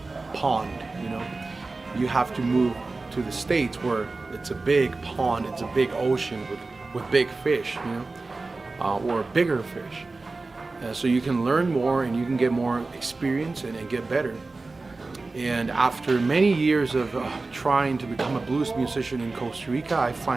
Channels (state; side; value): quieter; left; 3.5 dB